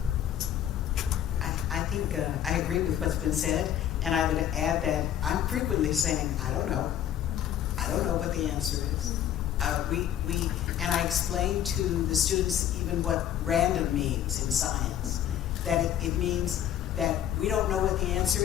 I think I agree with what's been said, and I would add that I'm frequently saying, I don't know what the answer is. And I explain to the students even what random means in science, that it means that we don't know what the answer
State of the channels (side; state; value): right; quieter; 10.7 dB